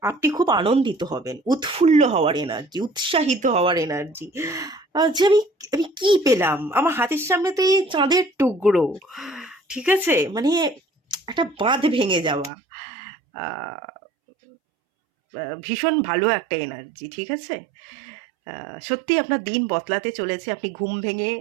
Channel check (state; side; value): drops out; left; at 12.5 s